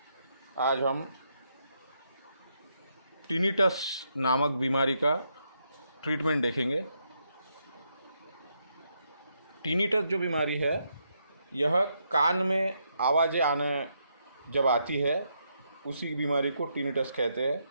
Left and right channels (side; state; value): both; inverted; correlation -0.79